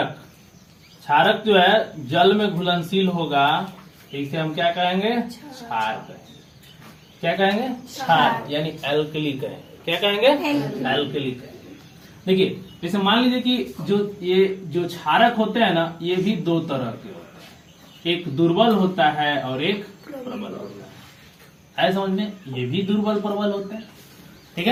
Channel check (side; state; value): both; identical; correlation 1.00